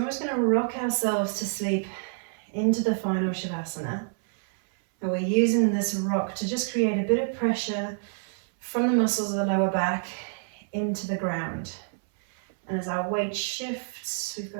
just going to rock ourselves to sleep into the final Shavasana. And we're using this rock to just create a bit of pressure from the muscles of the lower back into the ground. And as our weight shifts, we've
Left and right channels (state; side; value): silent; left; 60 dB below the other